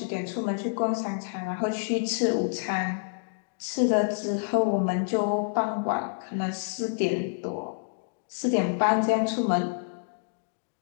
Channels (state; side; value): silent; right; digital silence